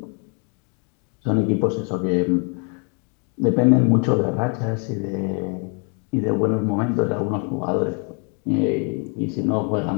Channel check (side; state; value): right; quieter; 38.1 dB